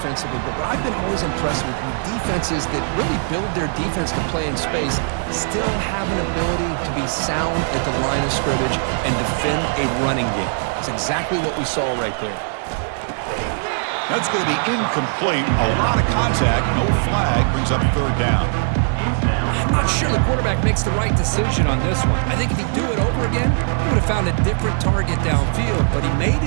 but what I've been always impressed with defenses that really build their defense to play in space still have an ability to be sound at the line of scrimmage and defend a running game. It's exactly what we saw right there. That's going to be incomplete. A lot of contact. No flag. Brings up third down. I'm not sure the quarterback makes the right decision on this one. I think if he'd do it over again, he would have found a different target downfield, but he made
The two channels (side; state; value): left; silent; digital silence